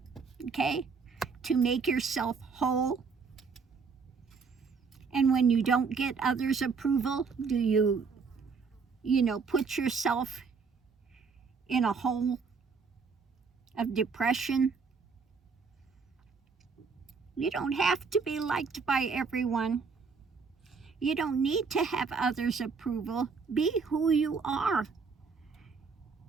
Okay? To make yourself whole? And when you don't get others' approval, do you put yourself in a hole of depression? You don't have to be liked by everyone. You don't need to have others' approval. Be who you are.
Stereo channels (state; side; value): quieter; left; 5.2 dB